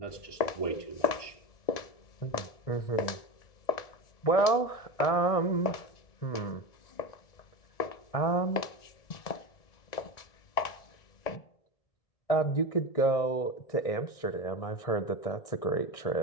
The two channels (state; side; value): late; right; 1.9 ms